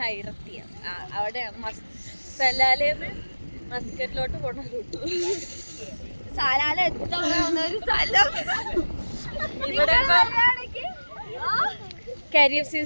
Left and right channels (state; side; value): inverted; both; correlation -1.00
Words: അവിടെയാണ് സലാലേന്ന് മസ്കറ്റിലോട്ട് പോണ റൂട്ട്. സലാല എത്താവുന്ന സ്ഥലം. ഇവിടെ കരിയർ